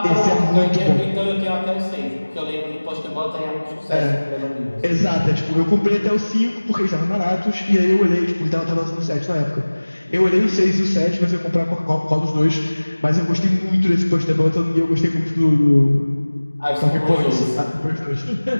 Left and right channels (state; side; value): inverted; both; correlation -1.00